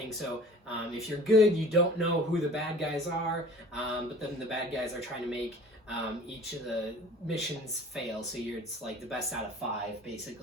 So if you're good, you don't know who the bad guys are, but then the bad guys are trying to make each of the missions fail. So it's like the best out of 5,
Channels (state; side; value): normal; both; correlation 0.46